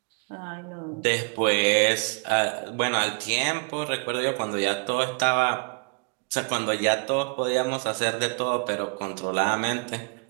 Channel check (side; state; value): left; quieter; 37.4 dB